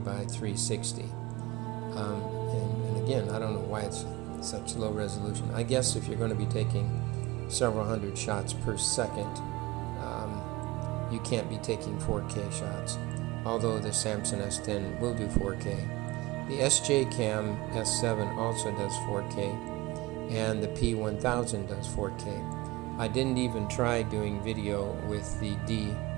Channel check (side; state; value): left; quieter; 21.1 dB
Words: 360. And again, I don't know why it's such low resolution. I guess if you're going to be taking several hundred shots per second, you can't be taking 4K shots, although the Samsung S10 will do 4K. The SJCAM S7 also does 4K, and the P1000 does 4K. I didn't even try doing video with the